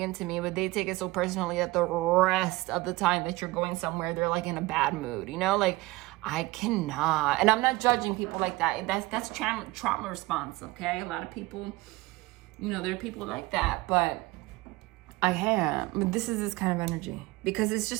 into me. But they take it so personally that the rest of the time that you're going somewhere, they're like in a bad mood, you know? Like, I cannot. And I'm not judging people like that. That's trauma response, okay? A lot of people, you know, there are people like that. But I can't. But this is this kind of energy. Because it's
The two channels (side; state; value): left; quieter; 20.9 dB